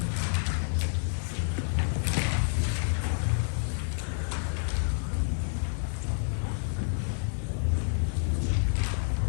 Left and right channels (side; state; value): right; silent; digital silence